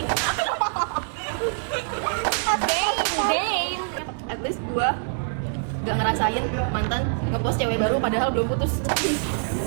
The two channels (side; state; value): left; silent; 62 dB below the other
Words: At least gue nggak ngerasain mantan ngepost cewek baru padahal belum putus.